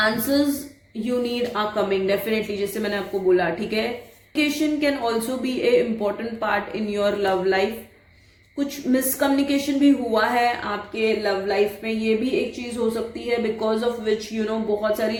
you need are coming definitely, जैसे मैंने आपको बोला, ठीक है। Communication can also be a important part in your love life. कुछ मिसकम्युनिकेशन भी हुआ है आपके लव लाइफ में, ये भी एक चीज हो सकती है, बिकॉज ऑफ विच बहुत सारी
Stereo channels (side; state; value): both; identical; correlation 1.00